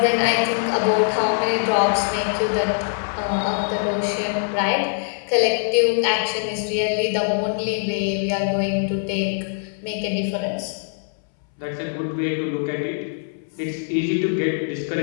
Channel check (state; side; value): silent; right; 64 dB below the other